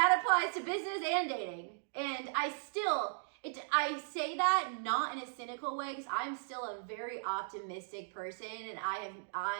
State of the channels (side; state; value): left; silent; digital silence